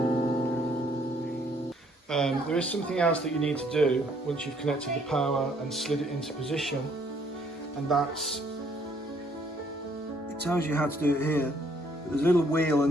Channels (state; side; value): normal; both; correlation 0.65